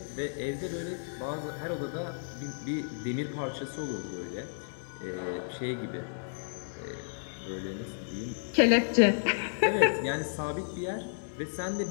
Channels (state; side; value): silent; right; digital silence